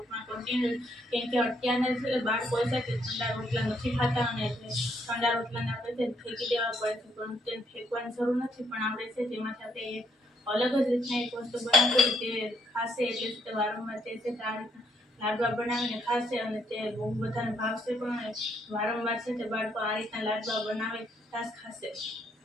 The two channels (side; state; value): both; normal; correlation 0.71